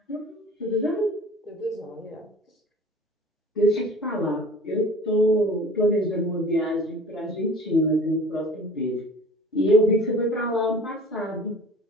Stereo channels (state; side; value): normal; both; correlation 0.43